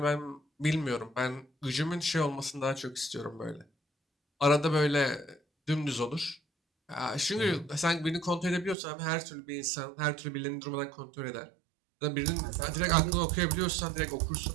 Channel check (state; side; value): drops out; left; at 8.8 s